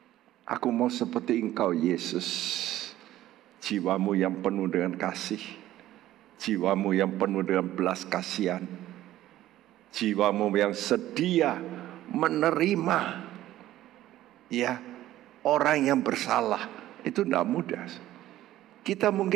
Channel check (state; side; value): quieter; left; 14.2 dB